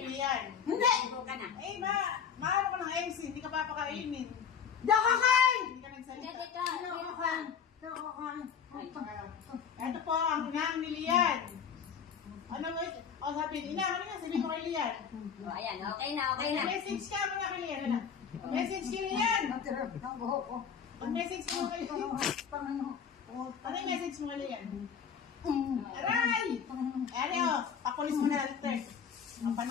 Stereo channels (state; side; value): quieter; right; 7.2 dB